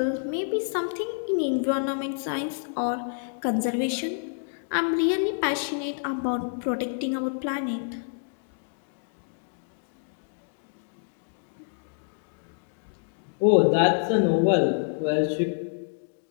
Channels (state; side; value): silent; right; digital silence